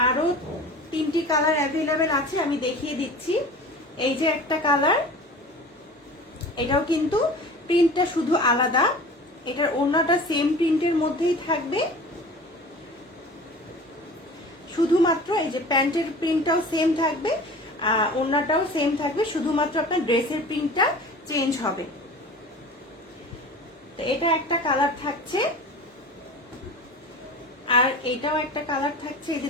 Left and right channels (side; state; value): both; normal; correlation 0.38